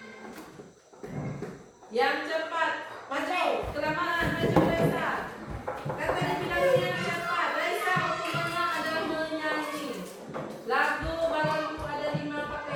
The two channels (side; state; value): both; identical; correlation 1.00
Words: Yang cepat. Maju. Kelamaan. Maju Raisa. Kata dibilangnya yang cepat. Raisa hukumannya adalah menyanyi. Lagu baru ada 5